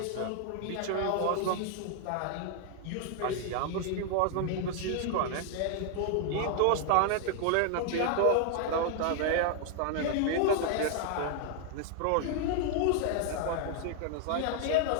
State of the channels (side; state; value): both; different; correlation 0.00